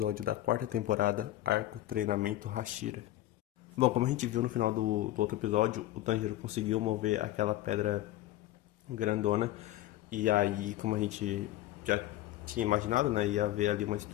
da quarta temporada, arco Treinamento Hashira. Bom, como a gente viu no final do outro episódio, o Tanjiro conseguiu mover aquela pedra grandona, e aí, como a gente já tinha imaginado, né, ia haver ali uma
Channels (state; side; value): quieter; right; 14.9 dB